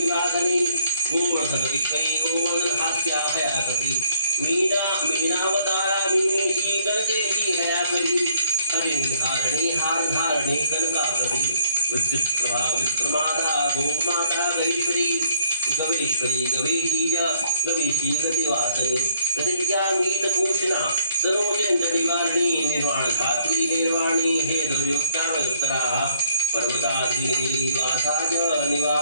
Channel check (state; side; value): inverted; both; correlation -0.58